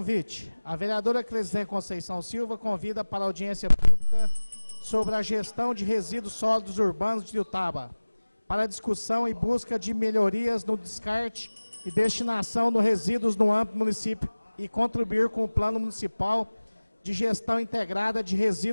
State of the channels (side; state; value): both; inverted; correlation -1.00